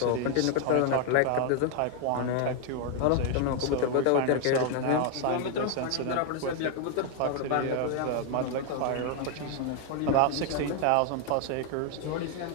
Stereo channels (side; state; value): both; different; correlation 0.00